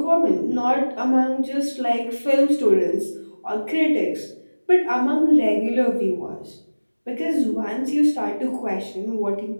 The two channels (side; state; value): both; inverted; correlation -1.00